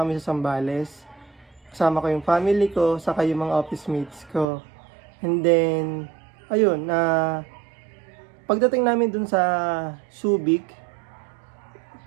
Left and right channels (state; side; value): drops out; left; at 4.5 s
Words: kami sa Zambales. Kasama ko yung family ko, saka yung mga office mates ko. And then, ayun, pagdating namin dun sa Subic,